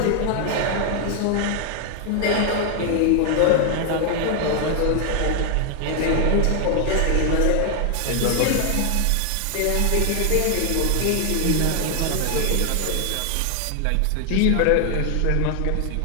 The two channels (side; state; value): both; different; correlation 0.00